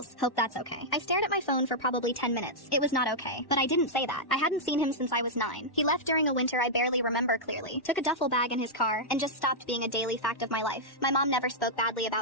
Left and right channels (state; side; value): late; right; 1.1 ms